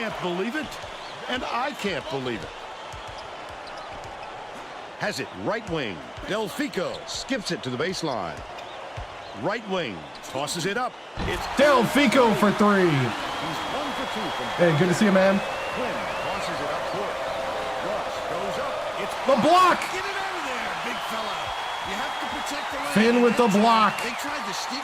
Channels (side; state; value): both; identical; correlation 1.00